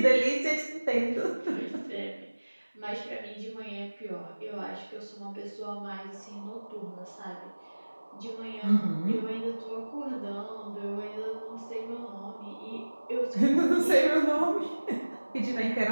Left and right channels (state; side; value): inverted; both; correlation -1.00